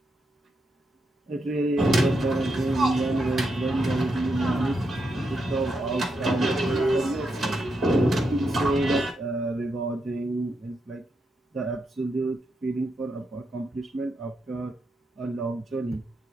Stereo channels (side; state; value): both; normal; correlation 0.83